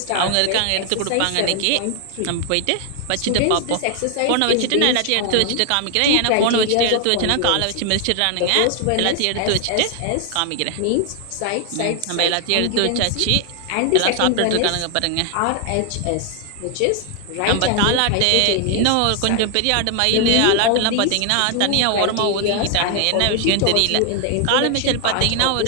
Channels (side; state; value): both; different; correlation 0.00